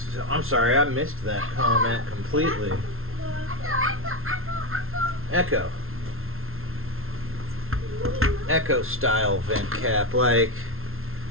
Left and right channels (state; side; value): late; left; 0.62 ms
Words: I'm sorry, I missed that comment completely. Echo. Echo style vent cap, like